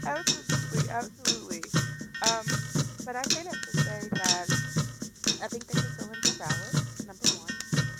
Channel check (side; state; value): both; identical; correlation 1.00